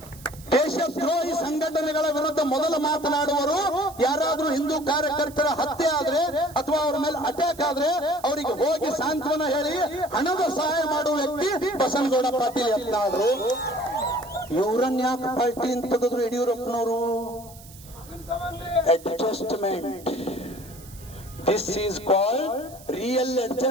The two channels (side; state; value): right; noise; hiss, 20 dB below the sound